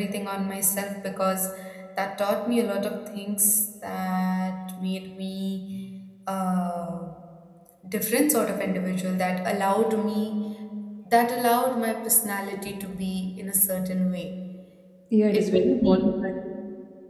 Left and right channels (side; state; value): both; identical; correlation 1.00